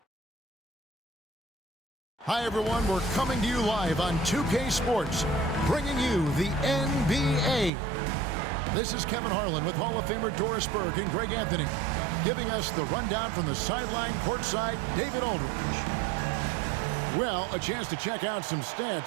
Hi, everyone. We're coming to you live on 2K Sports, bringing you the NBA. This is Kevin Harlan with Hall of Famer Doris Burke and Greg Anthony, giving us the rundown from the sideline courtside, David Aldridge. Well, a chance to check out some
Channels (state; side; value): drops out; left; at 7.7 s